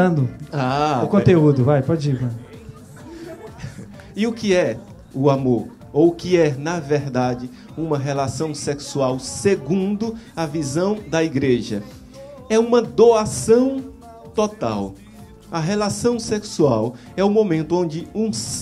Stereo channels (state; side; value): identical; both; correlation 1.00